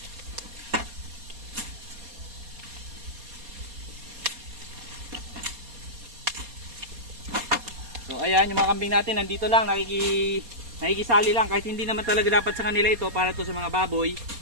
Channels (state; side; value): late; left; 4.2 ms